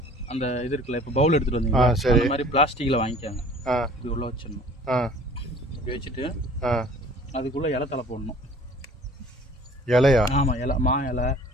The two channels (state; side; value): normal; both; correlation 0.49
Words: அந்த இது இருக்குல்ல, இப்போ பவுல் எடுத்துகிட்டு வந்தீங்க, அந்த மாதிரி பிளாஸ்டிக்கில் வாங்கிக்காங்க. இது உள்ளே வச்சிடணும். இப்படி வச்சுட்டு அதுக்குள்ளே இலை தலை போடணும். இலையா? ஆமாம், இலை, மா இலை,